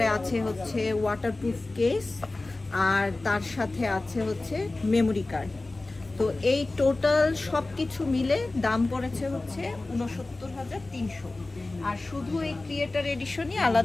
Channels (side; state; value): right; quieter; 3.1 dB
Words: আছে হচ্ছে ওয়াটারপ্রুফ কেস, আর তার সাথে আছে হচ্ছে মেমোরি কার্ড। তো এই টোটাল সব কিছু মিলে দাম পড়েছে হচ্ছে ৬৯,৩০০, আর শুধু এই ক্রিয়েটর এডিশনই